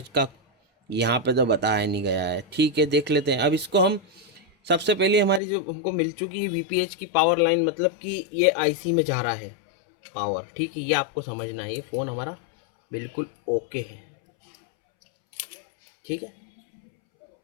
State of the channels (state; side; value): drops out; right; at 5.4 s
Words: का यहाँ पे तो बताया नहीं गया है। ठीक है, देख लेते हैं। अब इसको हम सबसे पहले हमारी जो हमको मिल चुकी है वीपीएच की पावर लाइन, मतलब कि ये आईसी में जा रहा है पावर। ठीक है, ये आपको समझना है। ये फ़ोन हमारा बिल्कुल ओके है। ठीक है,